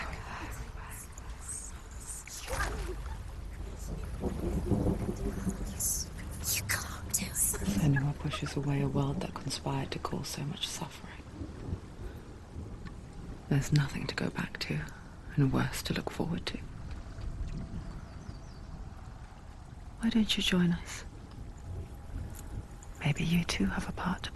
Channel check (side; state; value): both; identical; correlation 1.00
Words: You can't do it. Senua pushes away a world that conspired to cause so much suffering. There's nothing to go back to, and worse to look forward to. Why don't you join us? Maybe you too have a part to